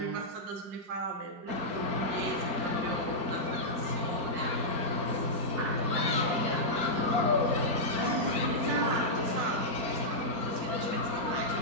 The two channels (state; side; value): late; left; 4.4 ms